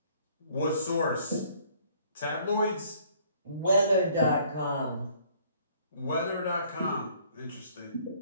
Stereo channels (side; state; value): both; inverted; correlation -0.60